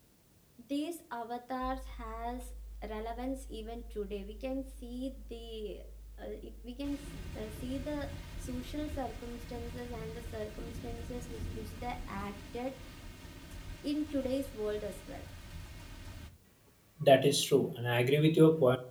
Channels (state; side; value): identical; both; correlation 1.00